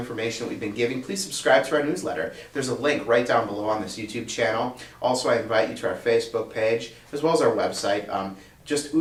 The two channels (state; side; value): identical; both; correlation 1.00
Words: that we've been giving, please subscribe to our newsletter. There's a link right down below on this YouTube channel. Also, I invite you to our Facebook page, as well as our website. Just